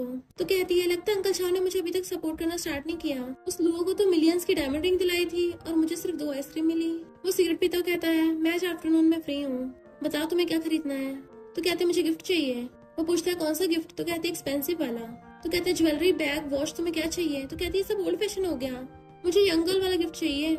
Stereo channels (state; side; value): identical; both; correlation 1.00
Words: तो कहती है लगता है अंकल शाह ने मुझे अभी तक सपोर्ट करना स्टार्ट नहीं किया, उस लुओ को तो मिलियंस की डायमंड रिंग दिलाई थी और मुझे सिर्फ 2 आइसक्रीम मिली। वो सिगरेट पीता कहता है मैं आज आफ्टरनून में फ्री हूँ, बताओ तुम्हें क्या खरीदना है। तो कहते मुझे गिफ्ट चाहिए। वो पूछता है कौन सा गिफ्ट। तो कहते एक्सपेंसिव वाला। तो कहते हैं ज्वेलरी बैग वॉच तुम्हें क्या चाहिए। तो कहती है सब ओल्ड फैशन हो गया, मुझे यंग गर्ल वाला गिफ्ट चाहिए।